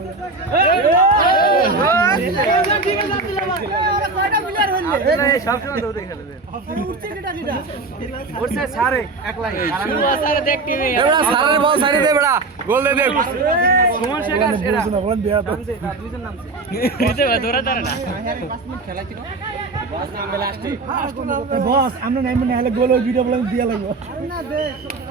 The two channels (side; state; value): left; quieter; 3.6 dB